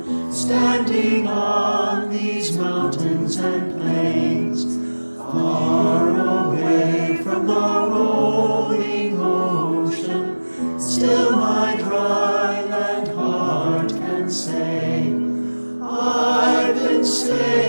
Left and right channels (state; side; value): inverted; both; correlation -1.00